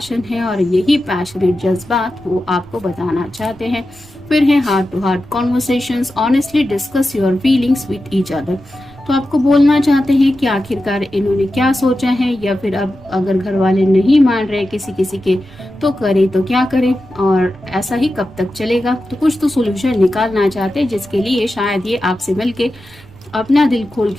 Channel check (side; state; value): right; noise; rumble, 23 dB below the sound